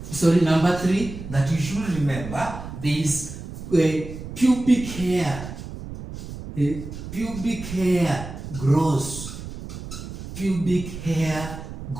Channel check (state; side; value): noise; right; rumble, 10 dB below the sound